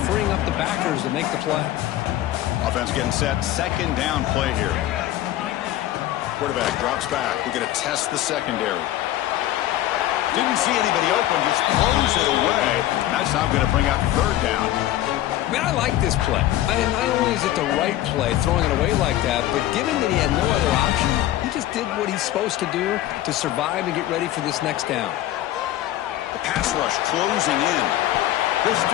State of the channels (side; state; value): right; quieter; 13.9 dB